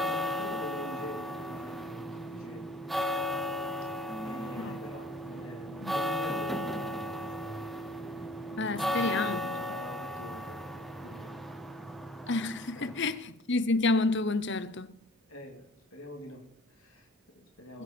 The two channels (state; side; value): normal; both; correlation 0.52